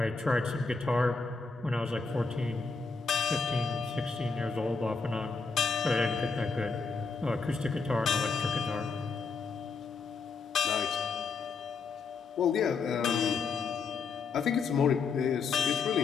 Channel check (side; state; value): right; quieter; 4.7 dB